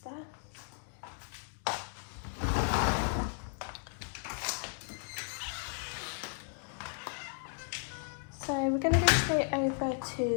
there. So we're going to go straight over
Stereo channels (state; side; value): silent; right; 55 dB below the other